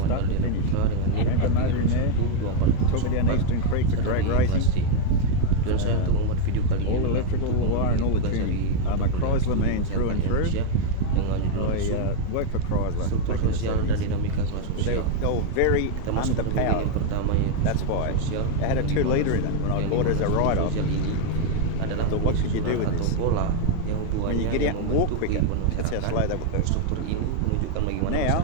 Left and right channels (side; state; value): both; different; correlation 0.00